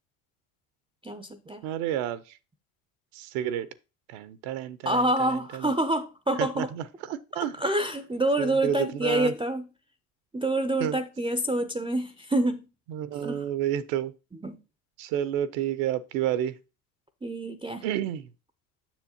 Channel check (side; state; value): left; quieter; 3.4 dB